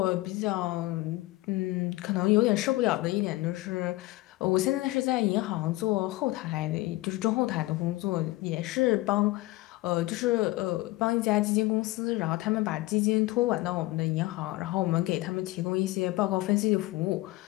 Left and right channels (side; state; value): right; quieter; 19.5 dB